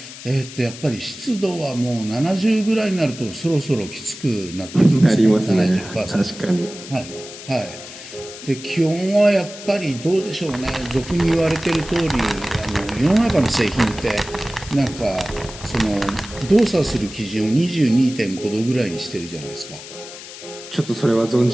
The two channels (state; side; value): noise; left; hiss, 14 dB below the sound